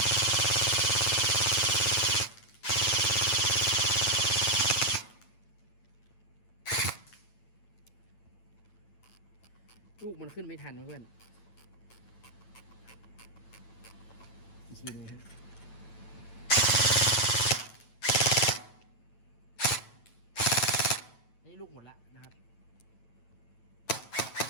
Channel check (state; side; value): late; right; 9.1 ms